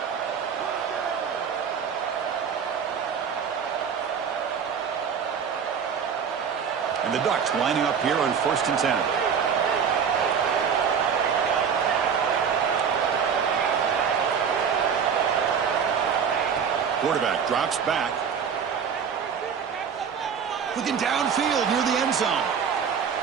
And the Ducks lining up here on 1st and 10. Quarterback drops back. Looking downfield near the end zone.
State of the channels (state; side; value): quieter; left; 7.0 dB